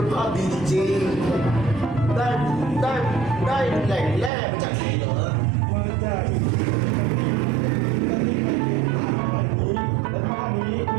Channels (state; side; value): drops out; left; at 4.3 s